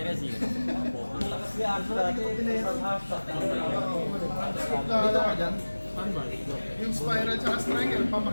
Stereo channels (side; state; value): both; inverted; correlation -1.00